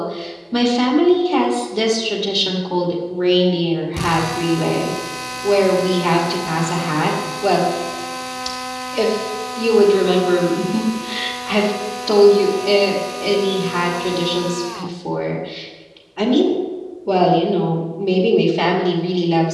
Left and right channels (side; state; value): both; identical; correlation 1.00